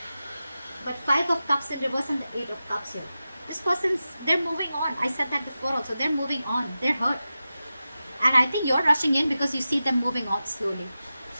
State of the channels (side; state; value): both; inverted; correlation -0.93